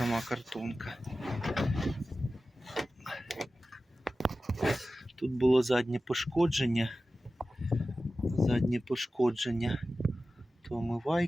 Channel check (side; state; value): both; normal; correlation 0.94